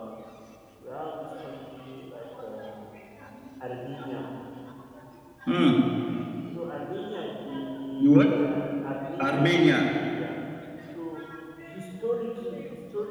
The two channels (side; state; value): both; identical; correlation 1.00